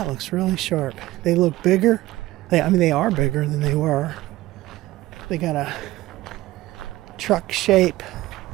looks really sharp. They look bigger. They are bigger than they were. They got a truck shape.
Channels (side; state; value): left; quieter; 17.0 dB